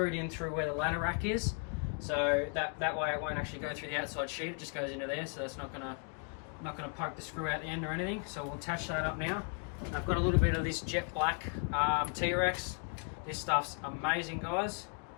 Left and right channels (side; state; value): right; quieter; 37.0 dB